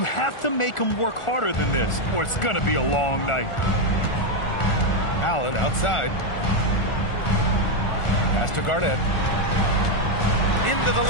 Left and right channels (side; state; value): right; late; 1.4 ms